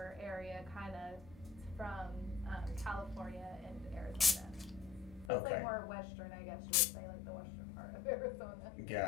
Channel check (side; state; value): right; drops out; at 5.3 s